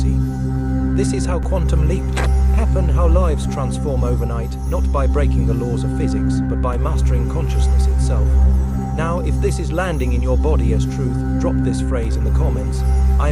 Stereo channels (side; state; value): both; identical; correlation 1.00